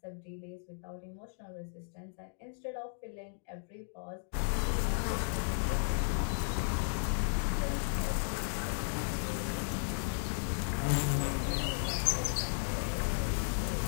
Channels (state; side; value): silent; right; digital silence